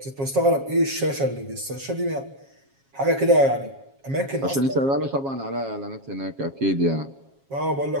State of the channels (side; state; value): left; late; 7.3 ms